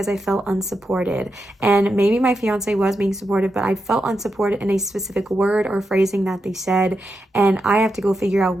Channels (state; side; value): normal; both; correlation 0.86